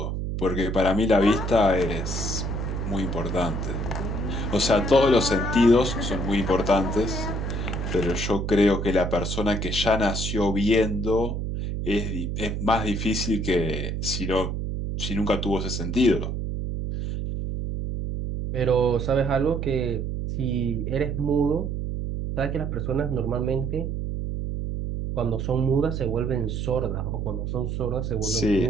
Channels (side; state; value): right; noise; hum, 2 dB below the sound